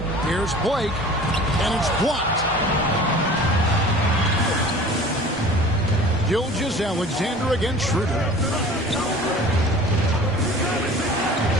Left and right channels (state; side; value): normal; both; correlation 0.44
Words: Here's Blake. And it's blocked. Gilgeous-Alexander against Schroeder.